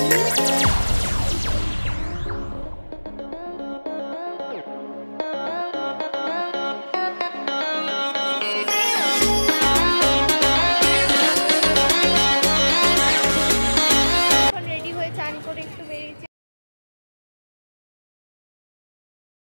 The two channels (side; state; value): both; inverted; correlation -1.00